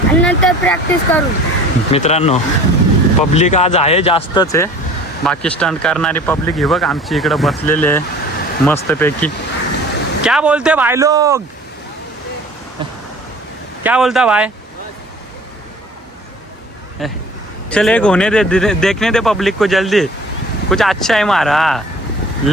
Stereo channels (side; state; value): both; normal; correlation 0.46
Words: आणि नंतर प्रॅक्टिस करू. मित्रांनो पब्लिक आज आहे जास्तच आहे. बाकी स्टंट करणारी पब्लिक हे बघ आमची इकडं बसलेले आहे मस्तपैकी. क्या बोलते भाई लोग क्या बोलता भाई. चल एक होने दे, देखने दे पब्लिक को जल्दी, कुछ अच्छा है मारा